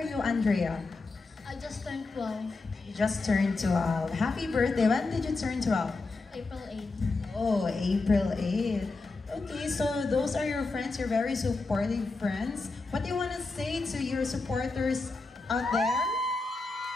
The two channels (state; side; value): quieter; right; 3.6 dB